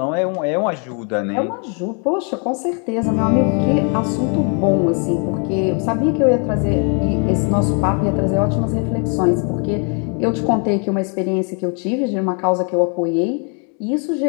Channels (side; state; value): right; quieter; 38.7 dB